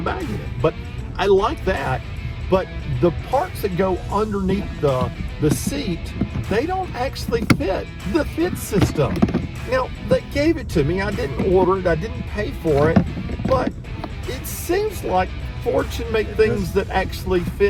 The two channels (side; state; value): both; identical; correlation 1.00